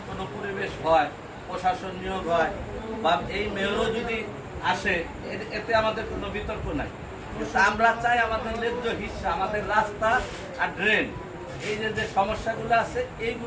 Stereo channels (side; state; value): both; identical; correlation 1.00